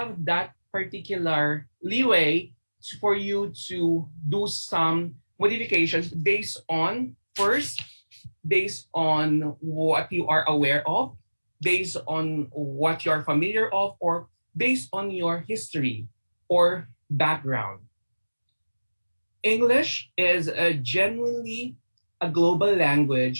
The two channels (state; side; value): inverted; both; correlation -1.00